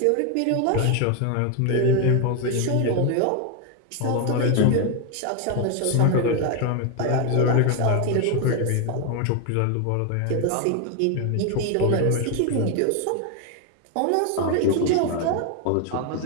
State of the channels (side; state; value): both; different; correlation 0.01